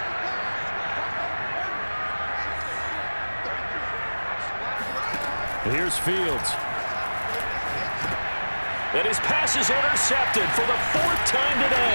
Here's Fields. And his pass is intercepted for the 4th time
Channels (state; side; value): inverted; both; correlation -1.00